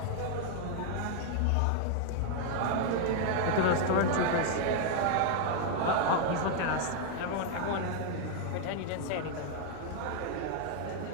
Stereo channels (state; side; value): different; both; correlation 0.00